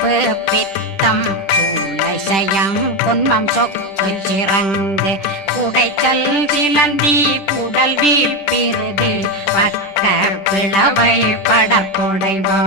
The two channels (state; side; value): late; right; 10 ms